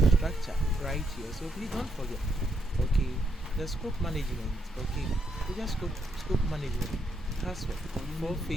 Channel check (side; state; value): both; normal; correlation 0.78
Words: structure right here. So please don't forget. Okay, the scope management. Okay, we just scope management has 4